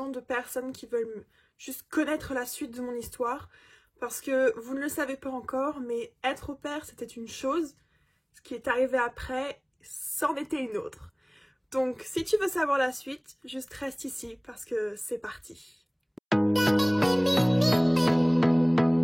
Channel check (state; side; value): identical; both; correlation 1.00